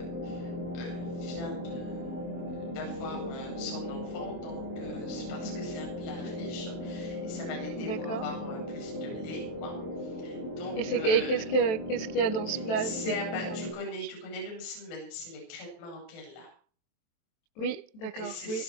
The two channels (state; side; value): late; right; 23 ms